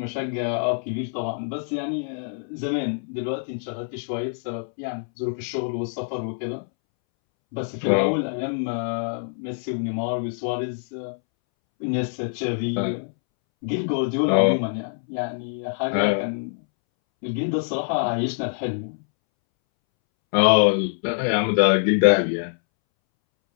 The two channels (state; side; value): silent; right; 62 dB below the other